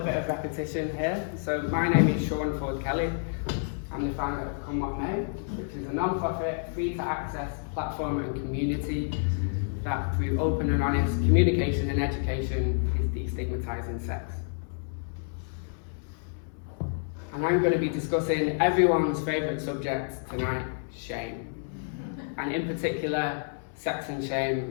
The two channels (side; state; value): right; silent; 56 dB below the other